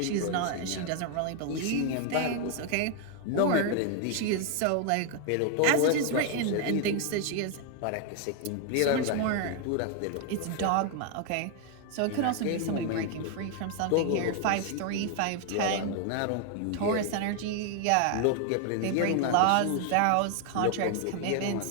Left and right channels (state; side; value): different; both; correlation 0.00